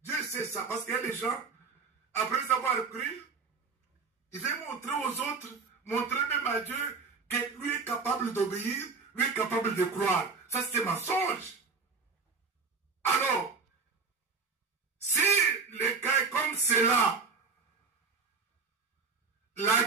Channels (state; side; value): quieter; left; 4.8 dB